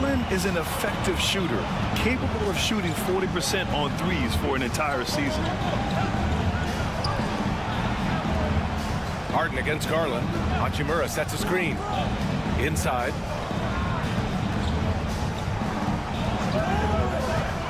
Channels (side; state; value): both; identical; correlation 1.00